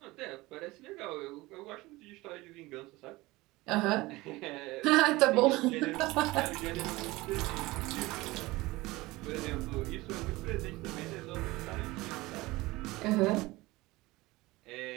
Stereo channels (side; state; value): left; quieter; 20.5 dB